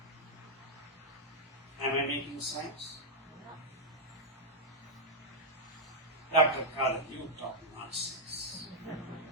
Am I making sense? Dr. Khadar, you talk nonsense.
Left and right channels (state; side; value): normal; both; correlation -0.05